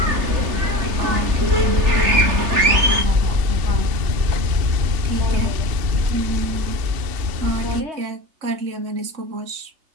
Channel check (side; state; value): left; late; 3.4 ms